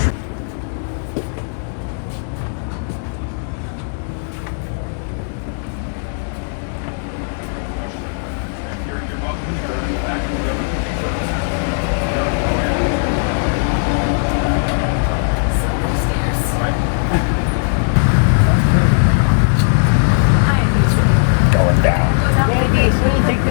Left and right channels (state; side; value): silent; right; digital silence